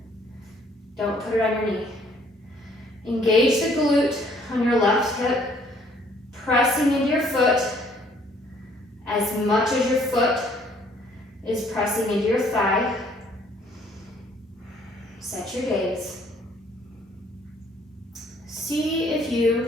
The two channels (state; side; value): normal; both; correlation 0.62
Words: Don't put it on your knee. Engage the glute on your left hip, pressing into your foot as much as your foot is pressing into your thigh. Set your gaze. See if